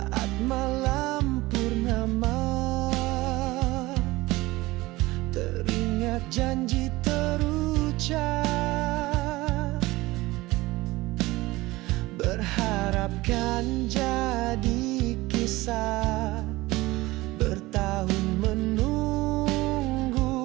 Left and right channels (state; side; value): quieter; left; 19.8 dB